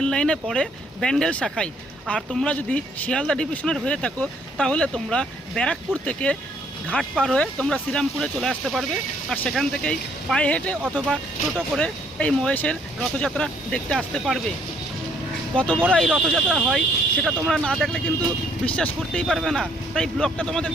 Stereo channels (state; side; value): normal; both; correlation 0.65